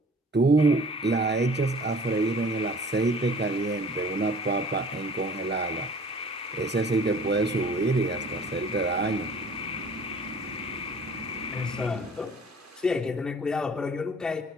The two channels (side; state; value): both; normal; correlation 0.50